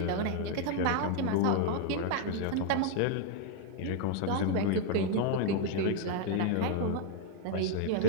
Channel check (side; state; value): both; different; correlation 0.00